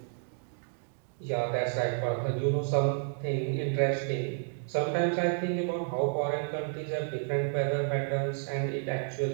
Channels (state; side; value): silent; left; 57 dB below the other